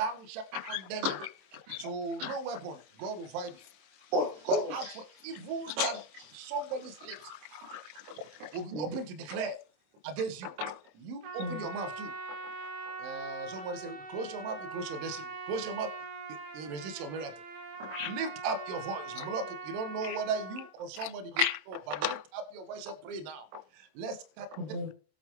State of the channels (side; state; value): left; late; 26 ms